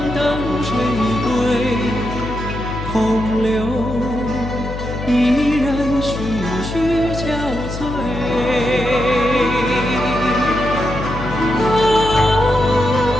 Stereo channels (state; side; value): noise; left; hum, 7 dB below the sound